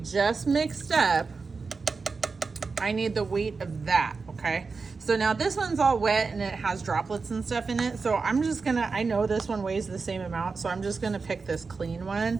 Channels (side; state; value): left; quieter; 4.5 dB